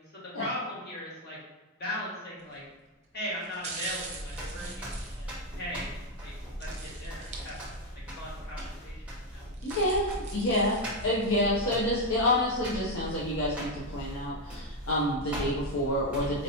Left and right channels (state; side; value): normal; both; correlation 0.06